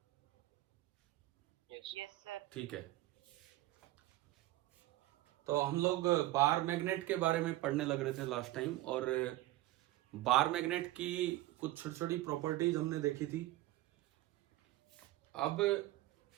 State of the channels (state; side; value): quieter; left; 16.7 dB